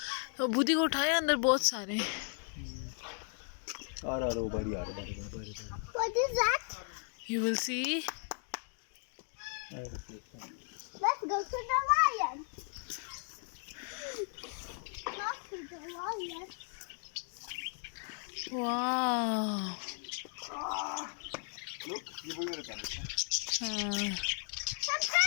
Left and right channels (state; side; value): silent; right; 54 dB below the other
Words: तो बुद्धि को उठाया अंदर बहुत सारे buddy. What is that? you will see Let's go to the lion. Not to the lion. wow Look, ये वही वाला parrot है. The